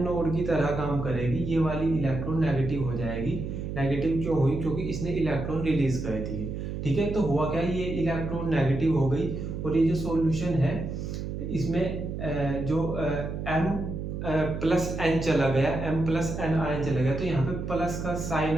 नोड की तरह काम करेगी, ये वाली इलेक्ट्रॉन नेगेटिव हो जाएगी। नेगेटिव क्यों हुई, क्योंकि इसने इलेक्ट्रॉन रिलीज कर दिए। ठीक है, तो हुआ क्या, ये इलेक्ट्रॉन नेगेटिव हो गई और ये जो सॉल्यूशन है इसमें जो M+N चला गया, M+N आयन चला गया, तो यहाँ पे प्लस का साइन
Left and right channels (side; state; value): right; noise; hum, 5 dB below the sound